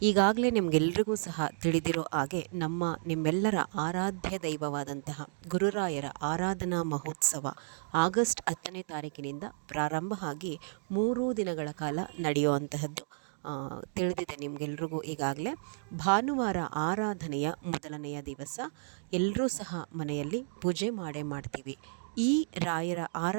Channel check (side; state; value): left; silent; digital silence